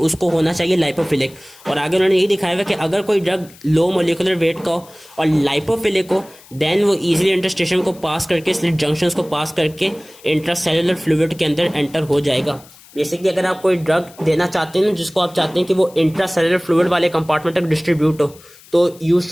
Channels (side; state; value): left; noise; hiss, 24 dB below the sound